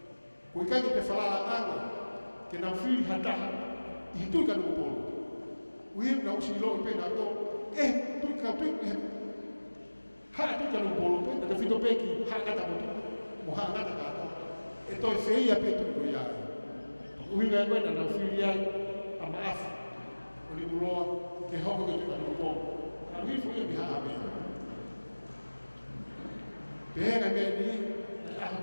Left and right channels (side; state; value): both; inverted; correlation -1.00